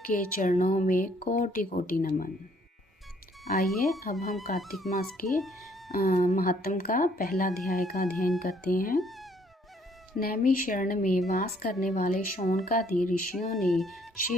के चरणों में कोटि कोटि नमन। आइए अब हम कार्तिक मास के महात्म का पहला अध्याय का अध्ययन करते हैं। नैमिषारण्य में वास करने वाले शौनकादि ऋषियों ने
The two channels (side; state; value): both; normal; correlation 0.64